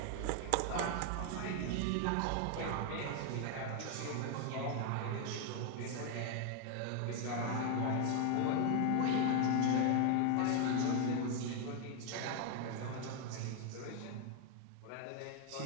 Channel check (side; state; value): both; different; correlation 0.01